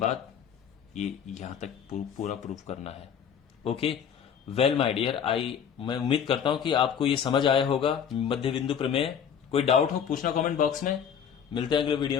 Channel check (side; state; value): right; quieter; 7.9 dB